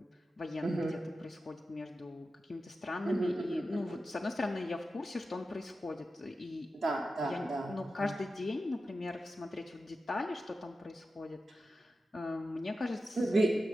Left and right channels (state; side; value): normal; both; correlation 0.92